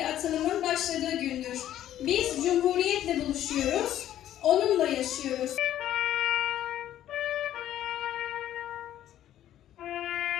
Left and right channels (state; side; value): quieter; right; 12.0 dB